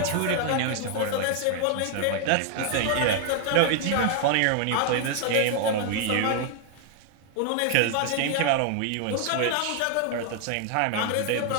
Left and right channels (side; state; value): both; different; correlation 0.00